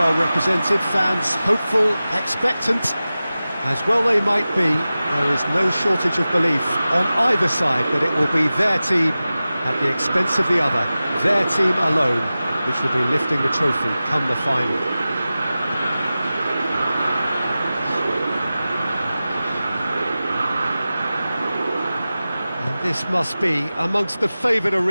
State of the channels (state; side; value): inverted; both; correlation -0.96